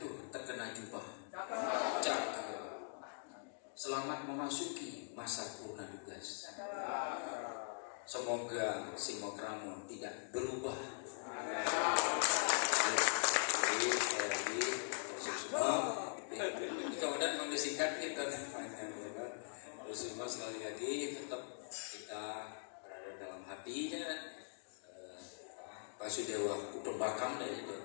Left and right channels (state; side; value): silent; right; digital silence